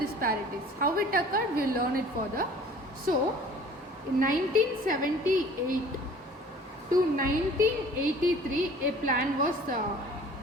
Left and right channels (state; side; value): normal; both; correlation 0.49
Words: How it occurred, we will learn it further. So in 1978 to 1983, a plan was